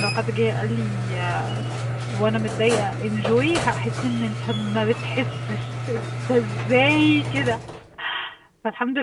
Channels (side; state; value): both; identical; correlation 1.00